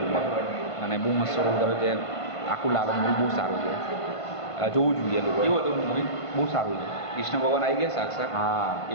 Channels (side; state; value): right; late; 1.5 ms